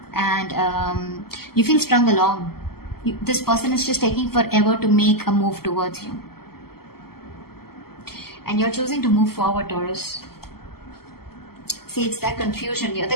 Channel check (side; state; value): right; late; 0.95 ms